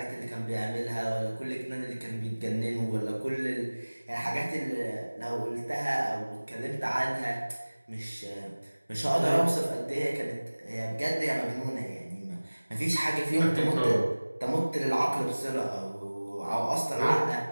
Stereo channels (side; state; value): both; inverted; correlation -1.00